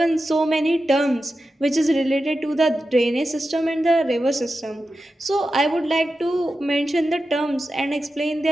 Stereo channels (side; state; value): both; normal; correlation 0.91